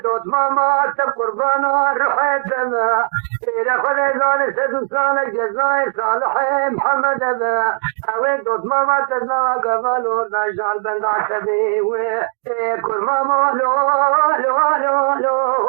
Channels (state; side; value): silent; left; digital silence